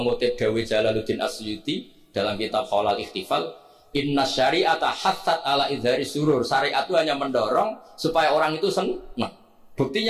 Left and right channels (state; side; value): identical; both; correlation 1.00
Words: dawuh Jalaluddin Asyuti dalam kitab Haulal Ikhtifal, inna syari'ata hatsat ala idhari surur. Syariat itu hanya mendorong supaya orang itu senang.